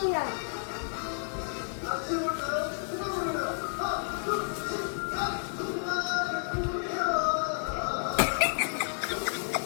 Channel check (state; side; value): silent; right; digital silence